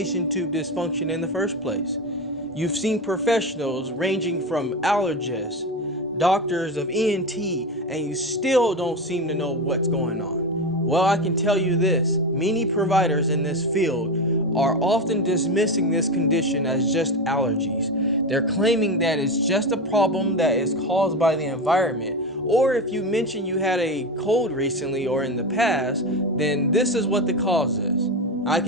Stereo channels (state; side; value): normal; both; correlation 0.18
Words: Tube Dysfunction in the first place. You've seen professionals ranging from allergists, doctors of ENT, and you still don't seem to know what's going on. Well, I can tell you this, many providers in this field are often dismissing this condition as just allergies. They're claiming that it's just a problem that is caused by the environment, or if you mention you had a cold recently or in the past, then this is what the cause is. I